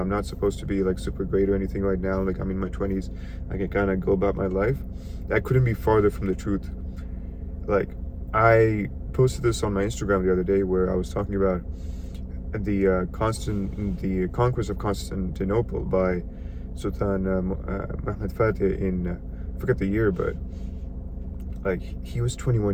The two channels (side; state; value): both; identical; correlation 1.00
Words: not supposed to be like super great or anything right now, like I'm in my 20s, I can kind of go about my life. That couldn't be farther from the truth. Like, I posted this on my Instagram the other day where I was talking about the conquest of Constantinople by Sultan Mehmed Fatih in I forget the year, but like he was